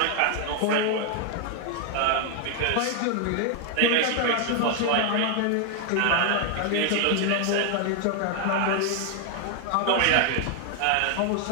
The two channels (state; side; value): different; both; correlation 0.00